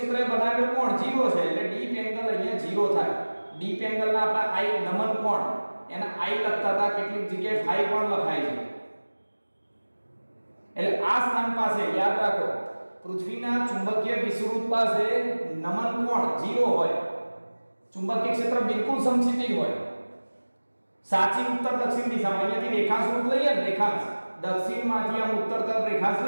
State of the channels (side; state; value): both; inverted; correlation -1.00